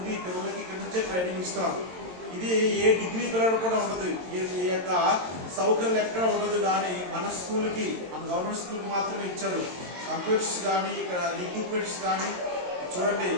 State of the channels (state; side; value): late; left; 22 ms